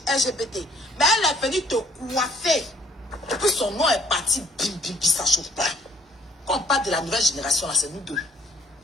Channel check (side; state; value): both; normal; correlation 0.62